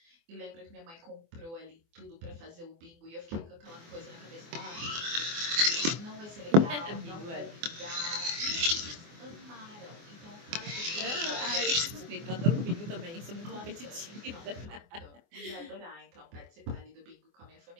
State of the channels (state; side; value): late; left; 24 ms